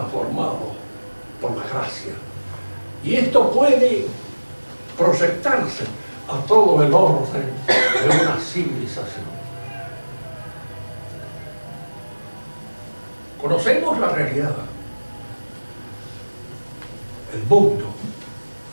por la gracia. Y esto puede proyectarse a todo el orden de una civilización. Conocemos la realidad, el mundo,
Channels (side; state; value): both; inverted; correlation -1.00